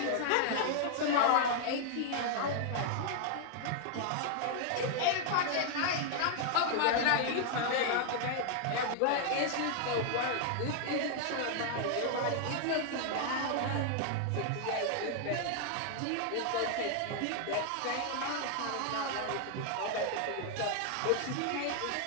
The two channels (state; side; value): different; both; correlation 0.00